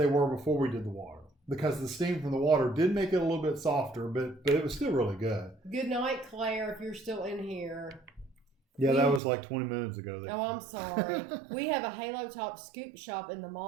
were before we did the water. Because the steam from the water did make it a little bit softer, but it was still really good. Good night, Claire, if you're still in here. Yeah, that was like 20 minutes ago. Oh, I'm sorry. We have a Halo Top scoop shop in the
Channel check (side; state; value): left; drops out; at 9.2 s